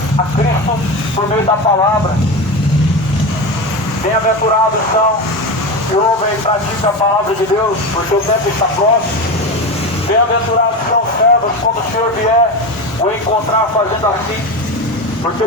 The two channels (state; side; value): late; right; 1.4 ms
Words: a Cristo por meio da palavra. Bem-aventurados são que ouvem e praticam a palavra de Deus, porque o tempo está próximo. Bem-aventurados são os servos quando o Senhor vier o encontrar fazendo assim, porque